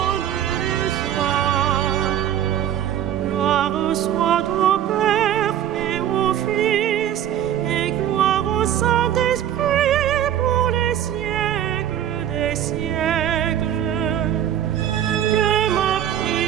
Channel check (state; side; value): quieter; left; 10.8 dB